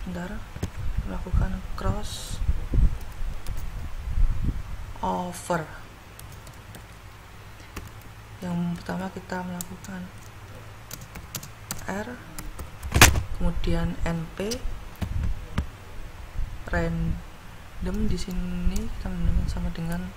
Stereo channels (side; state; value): both; identical; correlation 1.00